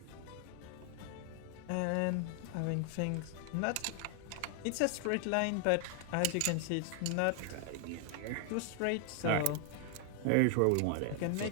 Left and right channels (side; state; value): both; different; correlation 0.00